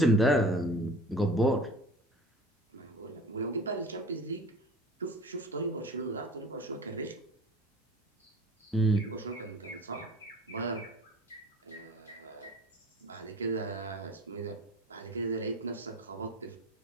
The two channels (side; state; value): both; normal; correlation 0.41